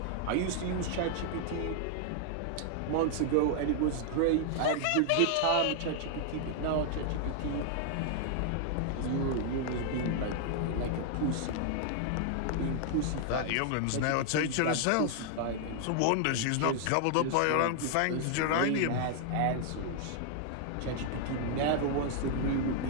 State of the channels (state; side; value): different; both; correlation 0.00